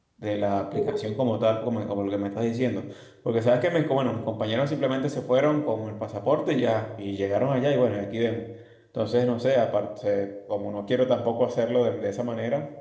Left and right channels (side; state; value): both; identical; correlation 1.00